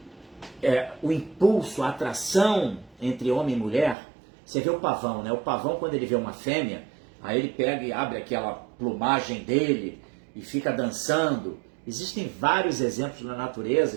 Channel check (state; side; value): drops out; left; at 4.0 s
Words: o impulso, a atração entre homem e mulher, você vê o pavão, né? O pavão, quando ele vê uma fêmea, aí ele pega e abre aquela plumagem dele e fica dançando. Existem vários exemplos na